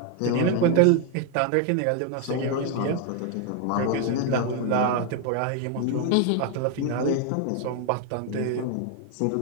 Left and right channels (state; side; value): different; both; correlation 0.01